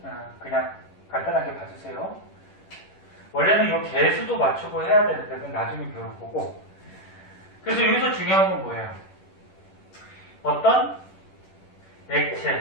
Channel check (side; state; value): right; late; 10 ms